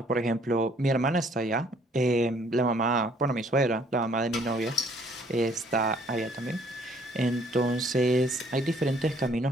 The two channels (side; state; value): both; normal; correlation 0.61